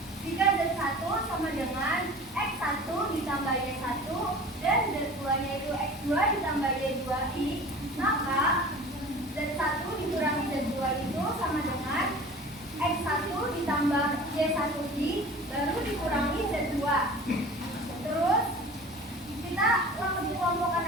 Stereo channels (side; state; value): both; normal; correlation 0.40